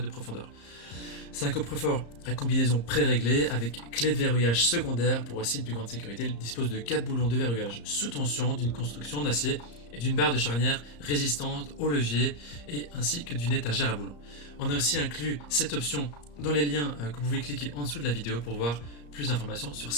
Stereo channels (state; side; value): late; right; 34 ms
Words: de profondeur. C'est un coffre-fort à combinaison pré-réglée avec clé de verrouillage secondaire pour aussi une plus grande sécurité. Il dispose de 4 boulons de verrouillage sous tension, d'une construction en acier et d'une barre de charnière résistante au levier et ainsi que d'une étagère à boulons. On a aussi inclus cette option dans les liens que vous pouvez cliquer en dessous de la vidéo pour voir plus d'informations sur